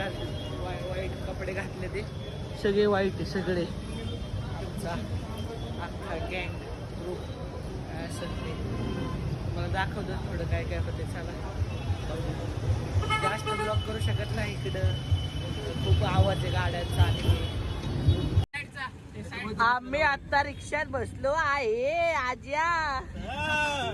कपडे घातले ते सगळे वाईट आहे सगळे. आमचा अख्खा गँग ग्रुप असं ते मला दाखवतो थोडं काय काय होते. चला जास्त ब्लॉक करू शकत नाही, इकडं खूप आवाज आहे गाड्यांचा. आणि आम्ही आता रिक्षात बसलो आहे आज्या.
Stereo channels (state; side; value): identical; both; correlation 1.00